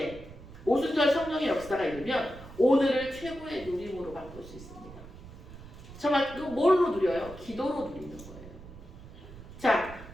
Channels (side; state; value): right; noise; rumble, 16 dB below the sound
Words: 오순절 성령의 역사가 이르면 오늘을 최고의 누림으로 바꿀 수 있습니다. 정말 그 뭘로 누려요? 기도로 누리는 거예요. 자,